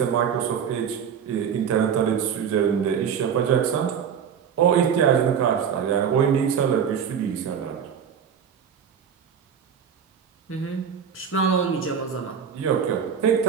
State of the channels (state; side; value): quieter; left; 7.7 dB